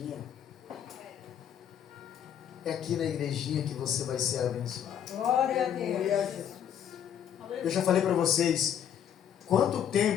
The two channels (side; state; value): right; quieter; 9.3 dB